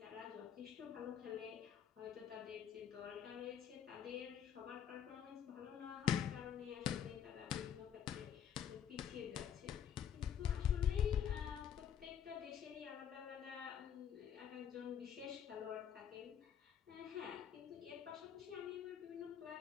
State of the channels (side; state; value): right; quieter; 8.8 dB